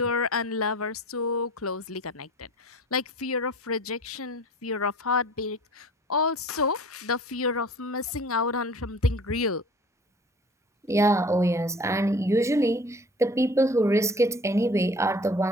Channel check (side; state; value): both; normal; correlation 0.45